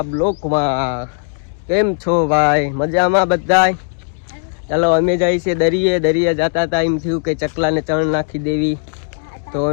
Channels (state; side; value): silent; right; 68 dB below the other